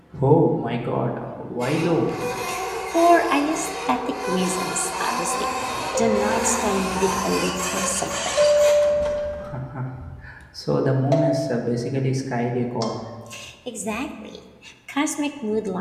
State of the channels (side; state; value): both; identical; correlation 1.00